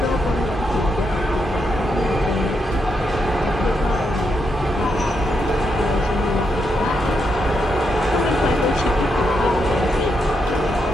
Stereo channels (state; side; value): normal; both; correlation 0.81